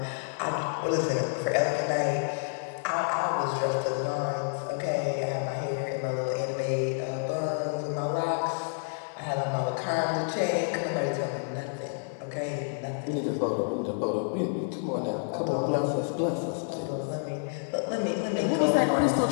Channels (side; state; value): right; silent; digital silence